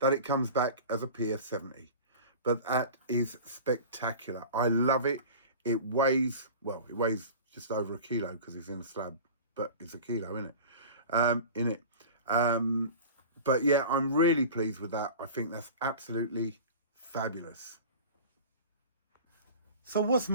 it comes back as a PF 70. But that is spectacular. I love it. It weighs, well, it weighs just over a kilo because it's in a slab, but it's a kilo, isn't it? But yeah, I'm really pleased with that. I think that's absolutely fabulous. So what's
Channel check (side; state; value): both; inverted; correlation -0.36